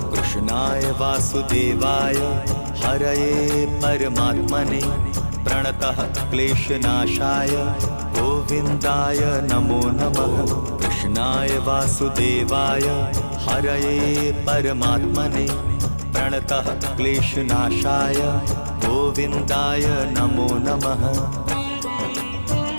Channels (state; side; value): inverted; both; correlation -1.00